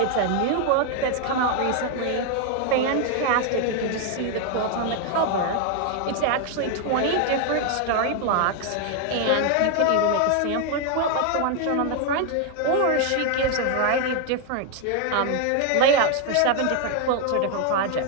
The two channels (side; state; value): both; different; correlation 0.00